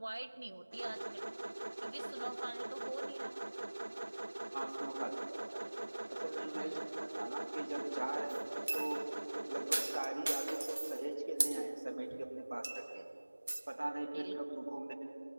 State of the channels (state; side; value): inverted; both; correlation -1.00